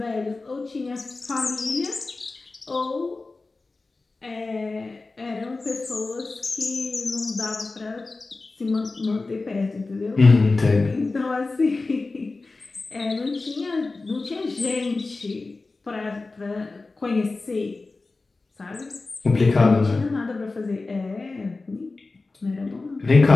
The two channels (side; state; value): right; quieter; 3.6 dB